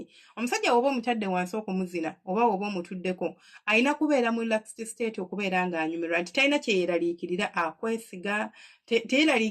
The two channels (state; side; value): identical; both; correlation 1.00